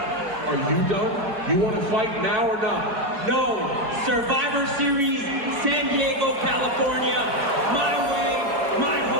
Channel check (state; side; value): late; left; 4.6 ms